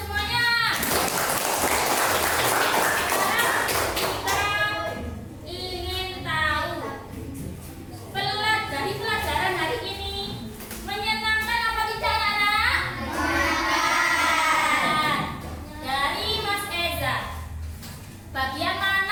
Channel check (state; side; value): identical; both; correlation 1.00